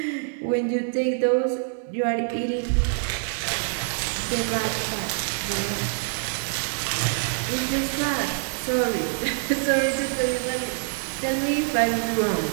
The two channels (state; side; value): silent; left; 58 dB below the other